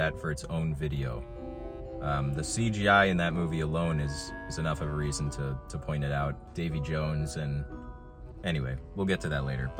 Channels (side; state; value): both; identical; correlation 1.00